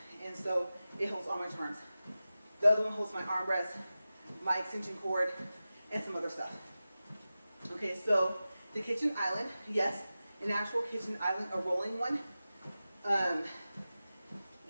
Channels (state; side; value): inverted; both; correlation -0.95